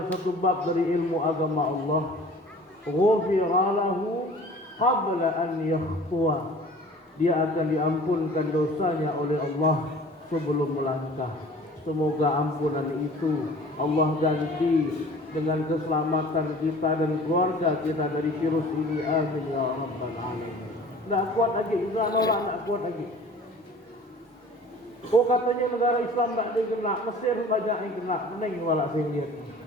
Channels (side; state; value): both; normal; correlation 0.46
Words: satu bab dari ilmu agama Allah, ghufira lahu qabla an yakhtuwa. Dia akan diampunkan dosanya oleh Allah sebelum melangkah. Semoga ampunan itu Allah ganti dengan keselamatan kita dan keluarga kita dari virus ini. Amin ya rabbal alamin. Tidak kuat lagi, Israel orang tidak kuat lagi. Oh katanya negara Islam tak ada yang kena, Mesir banyak yang kena, meneng walak saya lihat.